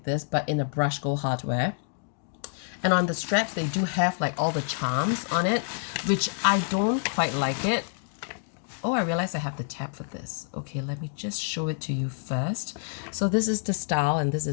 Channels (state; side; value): silent; right; digital silence